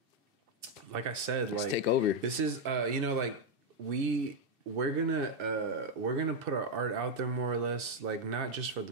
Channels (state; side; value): late; left; 2.6 ms